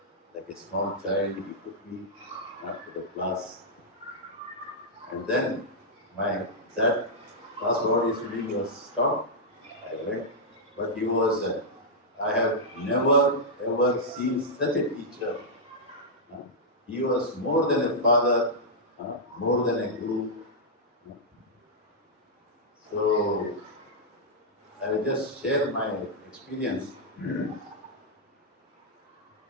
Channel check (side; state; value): both; normal; correlation -0.08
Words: like a small child, he took me to the class. And then that class body swimming was stopped. I went, but he was, I have never ever seen such a teacher. He was more than a father, more than a guru. So I will just share my experience.